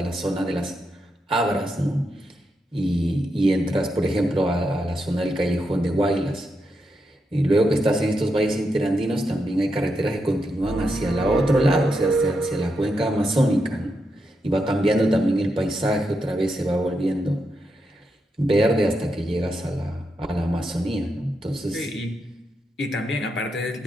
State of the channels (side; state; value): both; normal; correlation 0.84